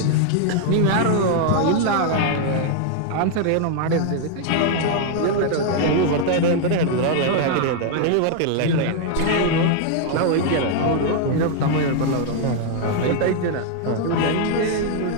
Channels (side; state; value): both; different; correlation 0.00